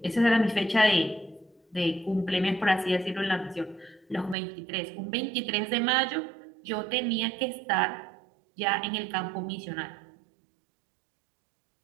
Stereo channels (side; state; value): left; drops out; at 4.4 s